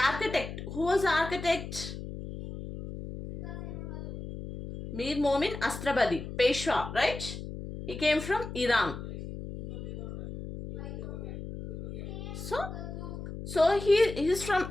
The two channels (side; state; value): left; noise; hum, 8 dB below the sound